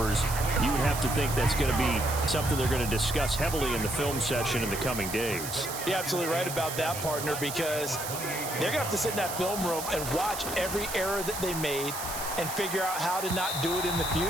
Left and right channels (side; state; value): right; noise; hiss, 7 dB below the sound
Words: You would have to think that's going to be something they're going to discuss heavily in the film session in the coming days. You're absolutely right about that, partner, because they're going to have to sit in that film room and watch every error that they made and figure out how to not do it in the